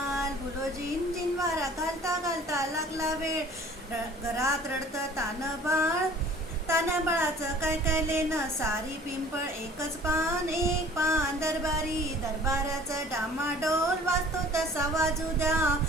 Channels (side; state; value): both; normal; correlation 0.49